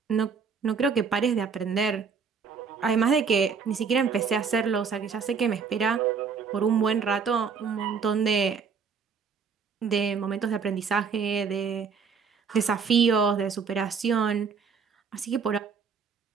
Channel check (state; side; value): quieter; left; 5.9 dB